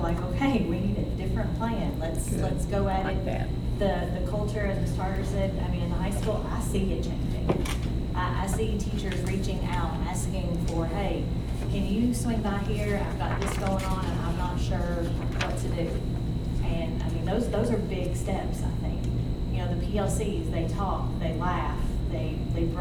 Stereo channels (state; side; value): identical; both; correlation 1.00